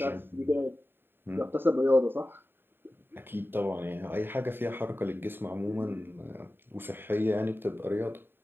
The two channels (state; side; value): late; left; 0.10 ms